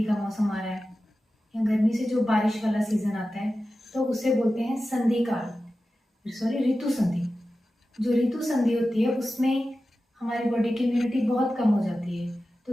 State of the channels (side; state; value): both; normal; correlation 0.94